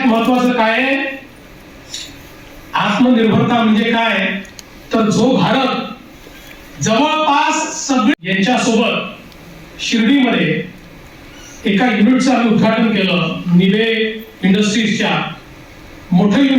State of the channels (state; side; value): identical; both; correlation 1.00